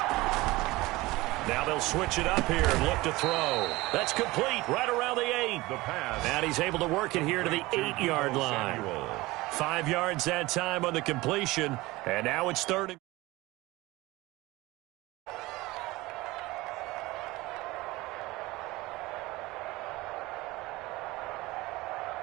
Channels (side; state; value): left; quieter; 20.3 dB